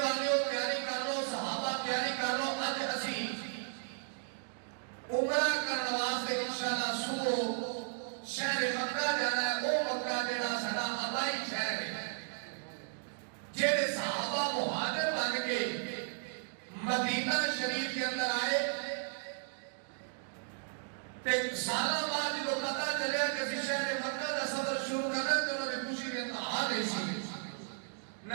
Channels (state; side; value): silent; left; digital silence